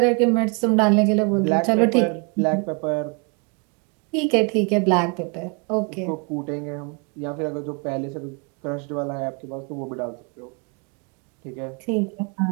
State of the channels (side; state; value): left; quieter; 34.2 dB